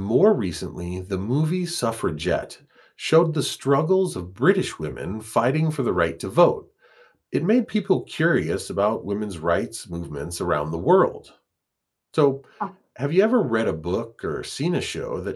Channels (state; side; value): identical; both; correlation 1.00